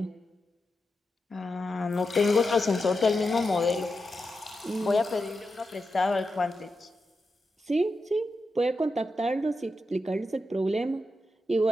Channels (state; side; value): normal; both; correlation 0.88